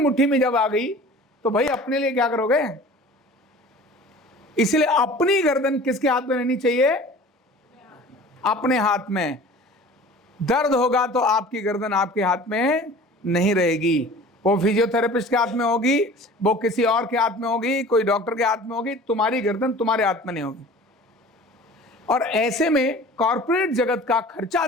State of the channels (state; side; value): normal; both; correlation 0.43